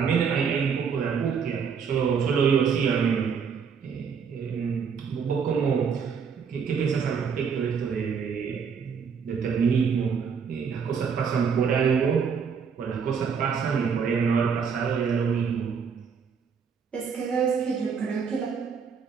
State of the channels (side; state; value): left; quieter; 6.4 dB